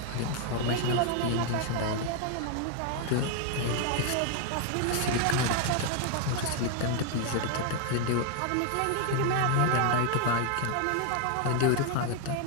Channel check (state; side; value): different; both; correlation 0.00